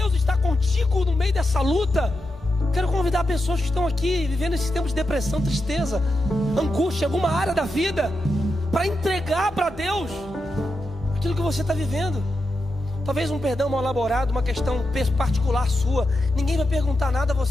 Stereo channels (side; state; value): both; normal; correlation 0.88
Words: está contigo no meio dessa luta. Quero convidar pessoas que estão aqui vivendo esses tempos de depressão, tristeza, angústia, alguma área da vida, para entregar para Deus aquilo que você está vivendo. Talvez um perdão mal elaborado, uma questão particular sua. Ninguém vai perguntar nada a